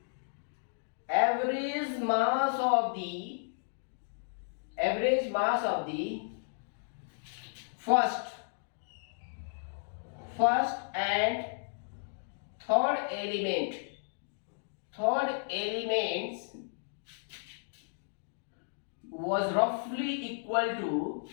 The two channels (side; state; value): right; silent; digital silence